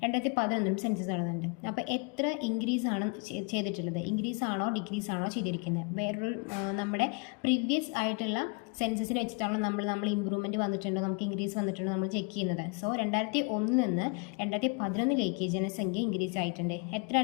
2011 സെൻസസ് നടന്നിട്ടുണ്ട്. അപ്പോൾ എത്ര ഇൻക്രീസ് ആണ് ചെയ്തിട്ടുള്ളത്? ഇൻക്രീസ് ആണോ ഡിക്രീസ് ആണോ ചെയ്തിരിക്കുന്നത്? വേറൊരു നമ്മുടെ പ്രീവിയസ് ആയിട്ടുള്ള സെൻസസിനെ വെച്ചിട്ടാണോ നമ്മൾ ഇമ്പ്രൂവ്മെൻറ്റ് വന്നിട്ടുണ്ടോ, നമുക്ക് ഇൻക്രീസ് വന്നിട്ടുണ്ടോ നമ്മൾ ചെക്ക് ചെയ്യുന്നത്. സോ 2001 നിന്ന് 2011 ജനസംഖ്യ ഇൻക്രീസ് ആയിട്ടുണ്ട്.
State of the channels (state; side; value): quieter; right; 33.9 dB